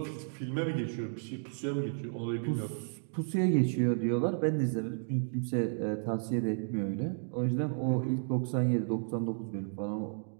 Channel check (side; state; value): left; silent; digital silence